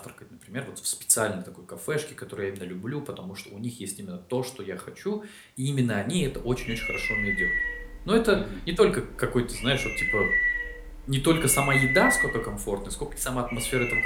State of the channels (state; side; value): identical; both; correlation 1.00